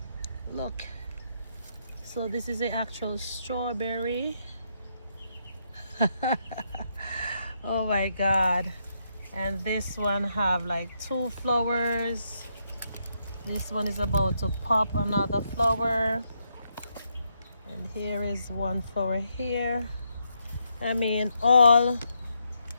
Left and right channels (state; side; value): inverted; both; correlation -0.78